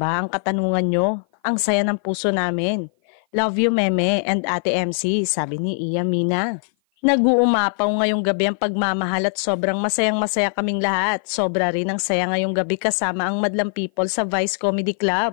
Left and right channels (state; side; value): silent; right; 55 dB below the other